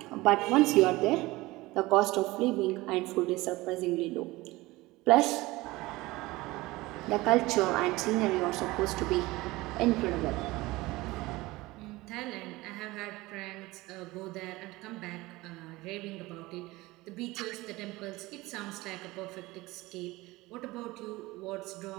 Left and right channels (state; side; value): quieter; left; 20.3 dB